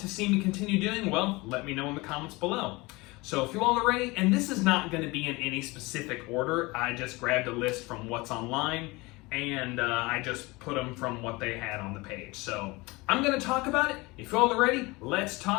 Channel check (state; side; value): quieter; right; 23.4 dB